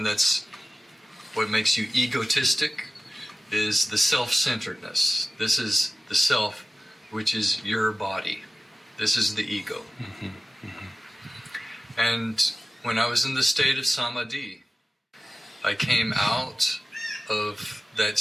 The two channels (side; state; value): both; normal; correlation 0.95